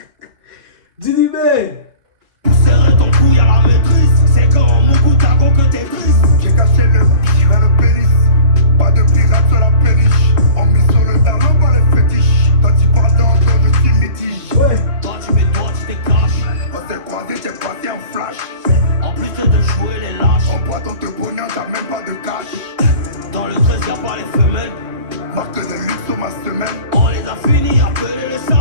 Didi Ben! Pousserait ton couille à la maîtrise. C'est quand Moku Tago que t'es triste. J'ai caché le bichon et le pénis. Pas de pirate sur la péniche. On mise sur le talon par les fétiches. Quand tu parles d'entre je suis métige. Ouais! Toi tu mets toi tu déclenches. On s'est croisés, j'ai passé un flash. En plus de jouer les lâches. On prend ton te pognon, t'as même pas de cash. Dans le 13 y'a pas les femelles. Marque de luxe sur ma semelle. On les a finis, appelez les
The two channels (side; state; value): left; late; 3.8 ms